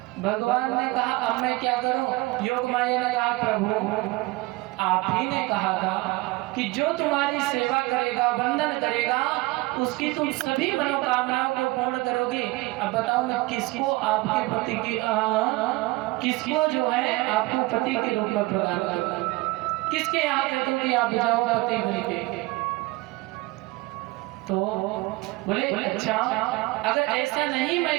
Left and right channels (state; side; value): quieter; left; 21.5 dB